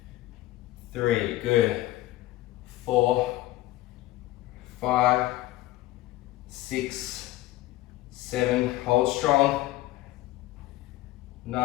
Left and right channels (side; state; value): right; quieter; 16.6 dB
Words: 3, good. 4, 5, 6, 7, hold strong.